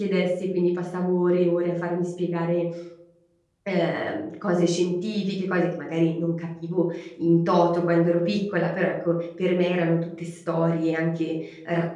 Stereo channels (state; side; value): identical; both; correlation 1.00